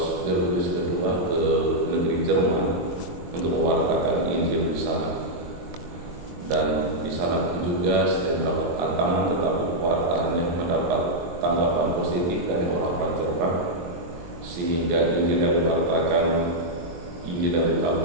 Gregorius kedua ke negeri Jerman untuk mewartakan Injil di sana. Dan di sana pun juga selain mendapat tantangan, tetapi pewartaannya mendapat tanggapan positif dari orang-orang Jerman, sehingga Injil yang diwartakan, Injil yang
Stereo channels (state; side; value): late; left; 23 ms